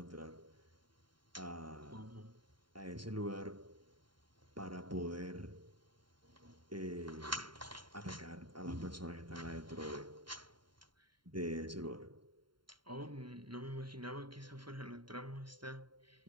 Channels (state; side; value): late; left; 0.72 ms